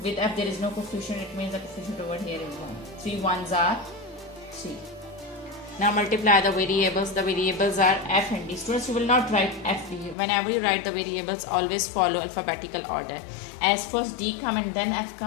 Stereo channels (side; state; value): right; drops out; at 10.2 s